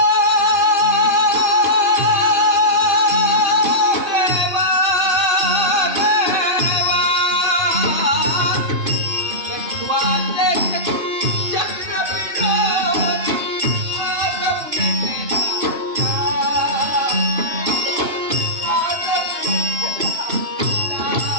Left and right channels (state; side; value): late; left; 2.6 ms